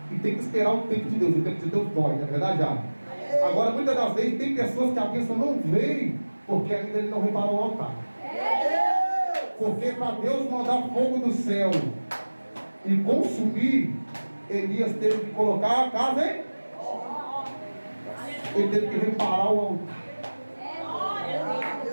E tem que esperar o tempo de Deus. O tempo de Deus dói, não é verdade, já? Agora, muitas das vezes, tem pessoas que a bênção não veio porque ainda ele não reparou o altar. Porque para Deus mandar fogo do céu e consumir, Elias teve que colocar a casa, hein? Ele teve que reparar o altar.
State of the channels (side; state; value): both; inverted; correlation -1.00